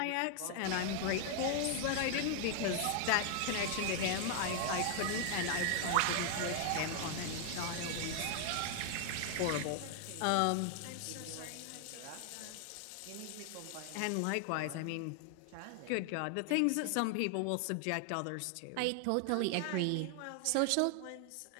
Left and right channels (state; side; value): different; both; correlation 0.00